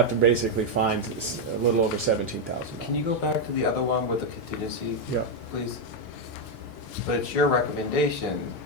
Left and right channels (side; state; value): right; late; 4.5 ms